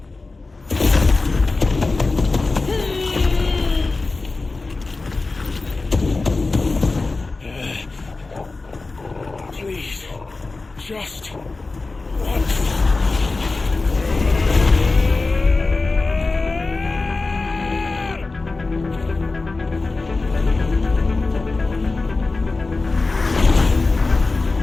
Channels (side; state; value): right; quieter; 3.6 dB